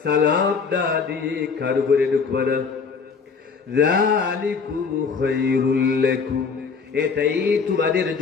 সালাম না দিয়ে কারো ঘরে ঢুকবা না। যালিকুম খায়রুল লাকুম, এটাই তোমাদের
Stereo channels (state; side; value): quieter; right; 5.3 dB